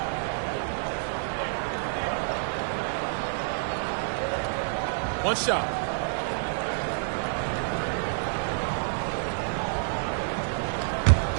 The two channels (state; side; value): silent; left; 59 dB below the other